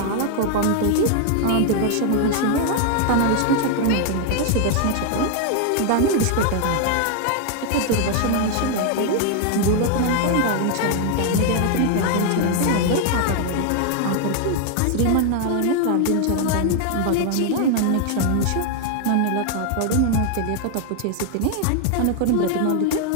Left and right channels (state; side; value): different; both; correlation 0.00